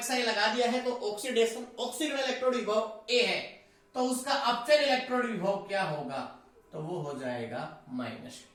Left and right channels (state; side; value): identical; both; correlation 1.00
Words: लगा दिया है तो ऑक्सीडेशन, ऑक्सीकरण इलेक्ट्रोड विभव A है, तो उसका अपचयन इलेक्ट्रोड विभव क्या होगा, तो वो हो जाएगा माइनस।